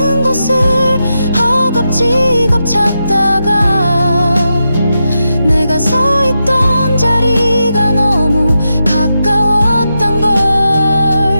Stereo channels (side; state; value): both; inverted; correlation -0.87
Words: 곳을 허겁지겁 찾다가 내가 서 있던 자리가 너무 가까웠던